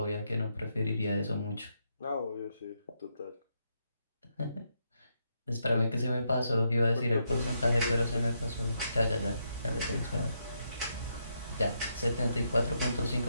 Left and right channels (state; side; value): inverted; both; correlation -0.80